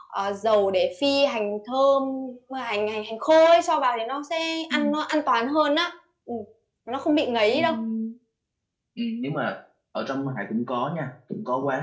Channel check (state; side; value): identical; both; correlation 1.00